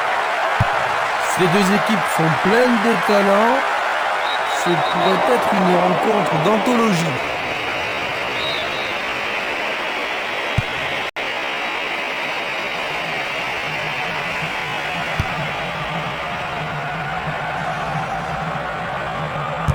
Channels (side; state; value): both; identical; correlation 1.00